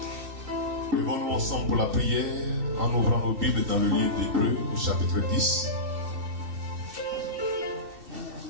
Levons-nous ensemble pour la prière en ouvrant nos Bibles dans le livre d'Hébreux au chapitre 10.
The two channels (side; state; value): left; late; 2.7 ms